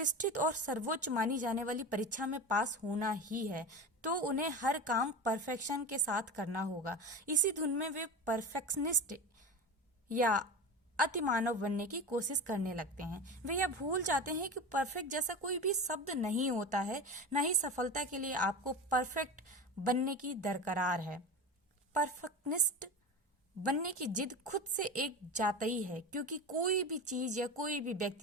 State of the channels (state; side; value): normal; both; correlation 0.27